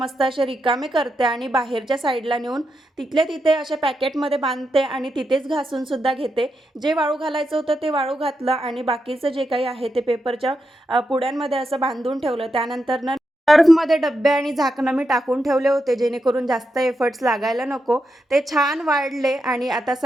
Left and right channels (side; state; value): both; normal; correlation 0.85